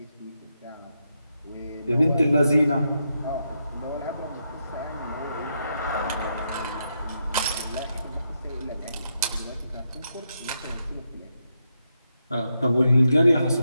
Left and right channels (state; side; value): inverted; both; correlation -0.83